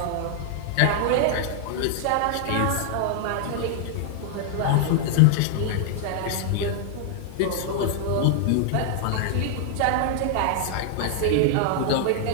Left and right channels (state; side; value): different; both; correlation 0.00